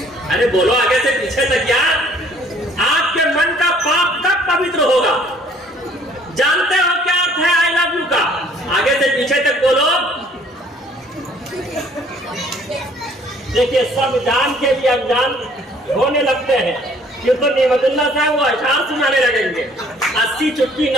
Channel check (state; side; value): normal; both; correlation 0.58